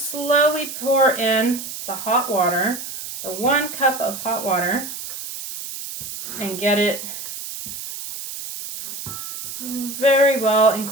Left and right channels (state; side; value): noise; right; hiss, 9 dB below the sound